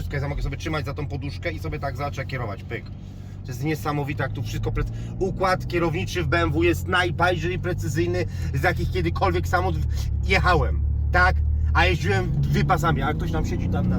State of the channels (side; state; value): both; identical; correlation 1.00